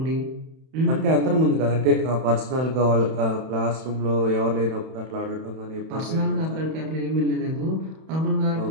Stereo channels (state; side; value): late; left; 31 ms